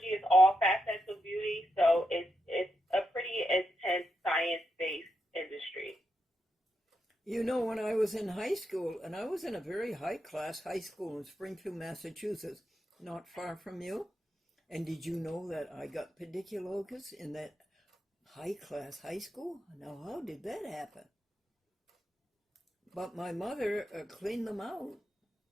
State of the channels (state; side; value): normal; both; correlation 0.85